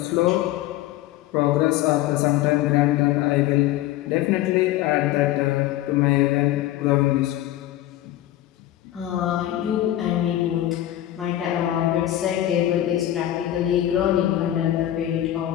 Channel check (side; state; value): right; quieter; 13.8 dB